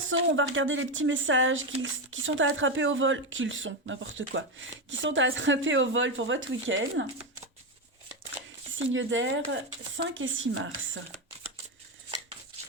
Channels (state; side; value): normal; both; correlation 0.11